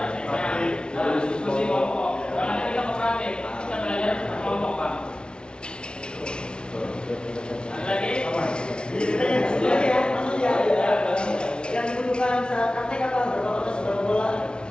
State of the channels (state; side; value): late; right; 0.055 ms